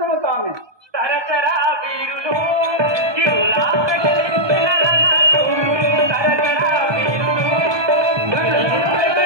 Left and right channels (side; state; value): left; late; 1.2 ms